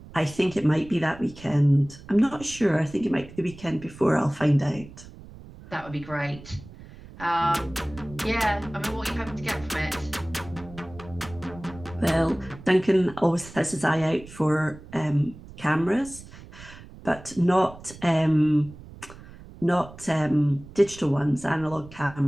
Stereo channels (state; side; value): noise; right; rumble, 18 dB below the sound